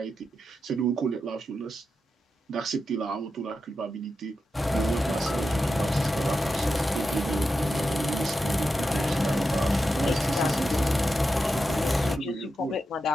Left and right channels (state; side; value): normal; both; correlation 0.89